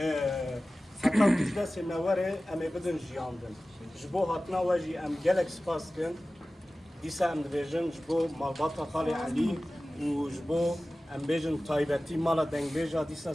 heta ku ji destê me were em ê bidin jiyandin. Ji bo hatina we jî em gelek spas dikin. Dîsa em dibêjin ji bo malbata Xalê Elî û ji bo em bêjin taybetî mala dengbêja dîsa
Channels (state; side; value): normal; both; correlation 0.96